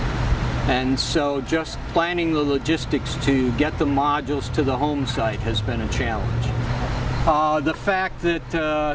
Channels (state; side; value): identical; both; correlation 1.00